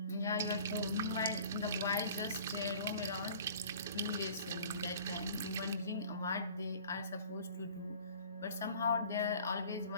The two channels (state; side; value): inverted; both; correlation -0.47